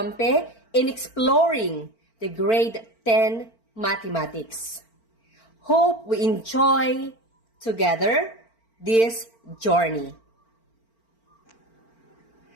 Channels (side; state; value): right; late; 4.4 ms